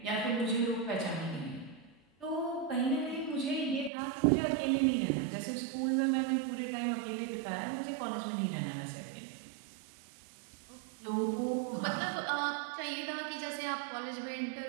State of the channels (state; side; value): drops out; left; at 3.9 s